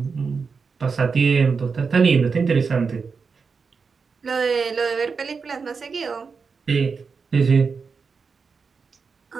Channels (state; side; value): quieter; left; 5.2 dB